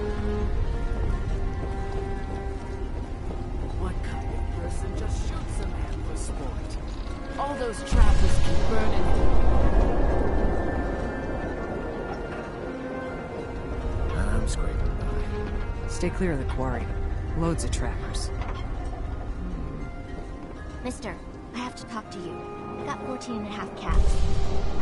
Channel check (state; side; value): identical; both; correlation 1.00